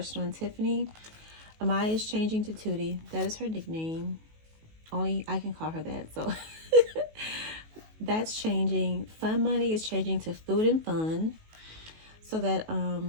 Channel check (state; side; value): late; left; 19 ms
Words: and Tiffany. Amaya is changing to Tootie. That is her nickname. Only I can call her that. So that's changing. Fun Money is changing to Food and Fun, so that